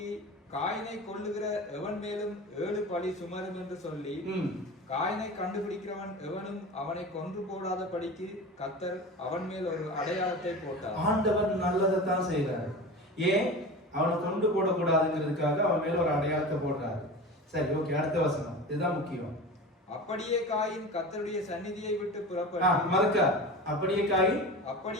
காயினை கொல்லுகிற எவன் மேலும் 7 பழி சுமரும் என்று சொல்லி காயினை கண்டுபிடிக்கிறவன் எவனும் அவனை கொன்று போடாத படிக்கு கர்த்தர் அவன் மேல் ஒரு அடையாளத்தை போட்டார். ஆண்டவர் நல்லதைத்தான் செய்யறாரு. ஏன்? அவனை கொண்டு போடக்கூடாதுங்கிறதுக்காக அவன் மேல ஒரு அடையாளத்தை போடுறாரு. சரி, ஓகே, அடுத்த வசனம், இதுதான் முக்கியம். அப்படியே காயின் கர்த்தருடைய சந்நிதியை விட்டு புறப்பட்டு அப்படியே காயின்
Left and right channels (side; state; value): both; normal; correlation 0.31